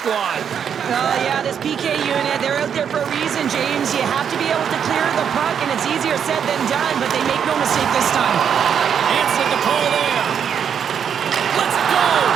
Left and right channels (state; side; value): quieter; left; 7.9 dB